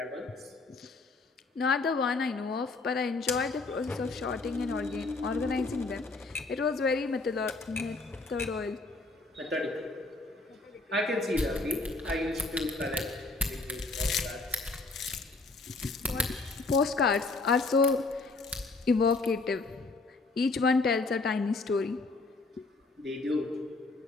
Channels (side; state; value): right; quieter; 3.6 dB